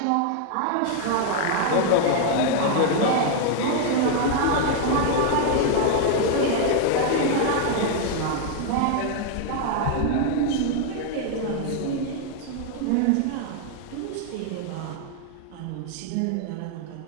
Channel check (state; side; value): different; both; correlation 0.00